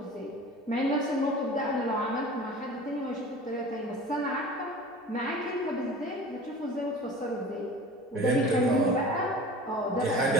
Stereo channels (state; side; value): normal; both; correlation 0.39